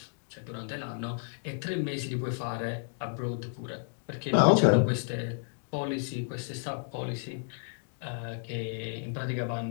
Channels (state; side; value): silent; right; digital silence